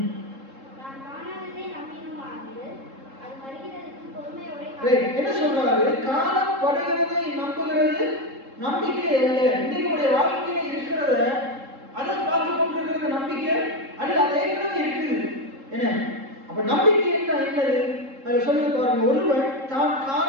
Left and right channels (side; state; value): left; late; 3.7 ms